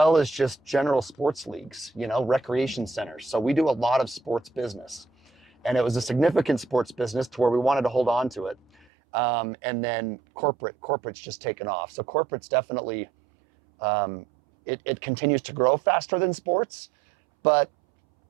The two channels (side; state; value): left; drops out; at 8.8 s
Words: as just general sports leagues, recreation centers. So we do a lot of sports business. And it was a significant sports business to where we wanted to hold on to it. And then corporate's just taken off. So corporate's definitely, it continues to grow faster than sports, but